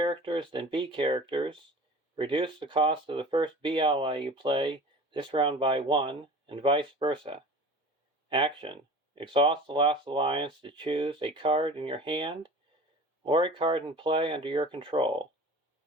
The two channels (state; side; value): normal; both; correlation 0.39